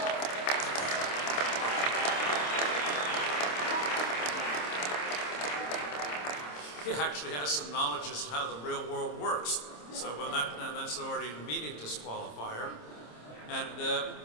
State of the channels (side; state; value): right; late; 26 ms